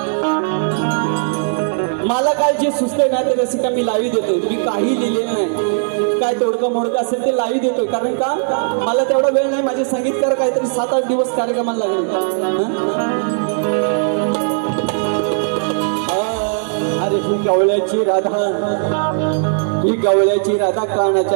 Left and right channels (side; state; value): left; silent; digital silence